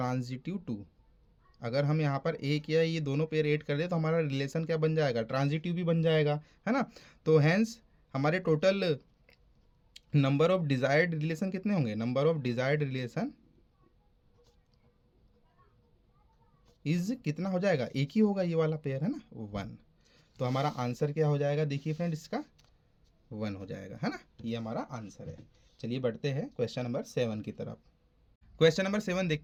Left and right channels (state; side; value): identical; both; correlation 1.00